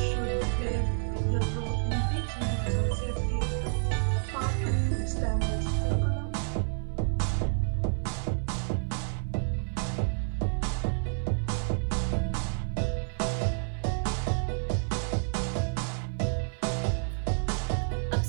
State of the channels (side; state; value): left; silent; 55 dB below the other